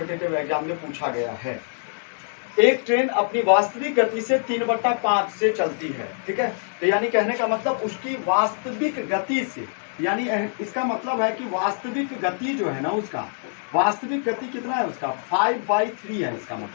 एग्जाम में पूछा गया है। एक ट्रेन अपनी वास्तविक गति से 3/5 से चलती है, ठीक है। तो यानी कहने का मतलब उसकी वास्तविक गति से, यानी इसका मतलब है कि वास्तविक गति जो है ना, उसका वास्तविक गति कितना है, उसका 5/3 है। इसका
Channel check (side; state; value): right; silent; digital silence